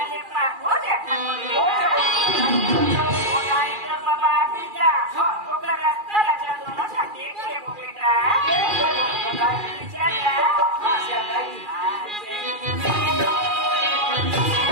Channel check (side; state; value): left; late; 2.4 ms